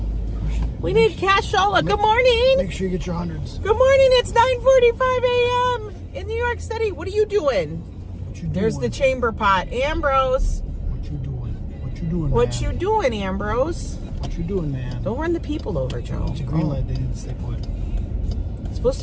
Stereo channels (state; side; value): identical; both; correlation 1.00